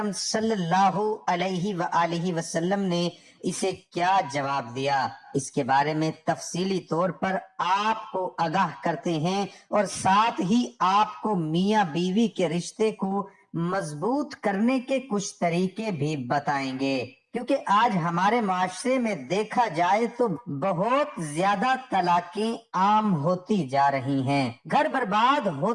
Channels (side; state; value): both; identical; correlation 1.00